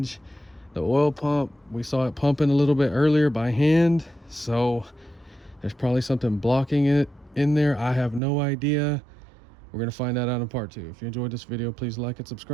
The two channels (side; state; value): left; drops out; at 8.2 s